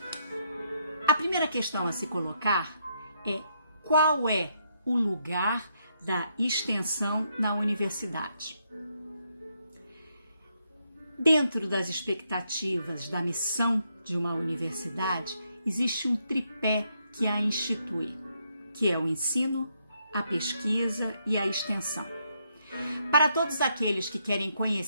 A primeira questão a se colocar é: qual é o lugar da extensão na universidade? Dentro das expectativas da missão de uma universidade, existe um tripé que a institui, que é o ensino, a pesquisa e a extensão. Para todos aqueles que querem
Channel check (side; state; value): both; inverted; correlation -0.77